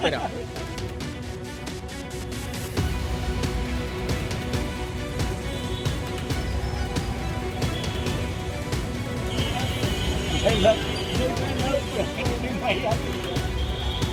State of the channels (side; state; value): both; identical; correlation 1.00